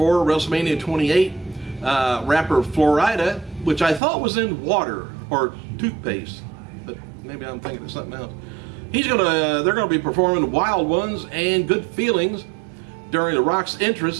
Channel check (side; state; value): left; drops out; at 4.0 s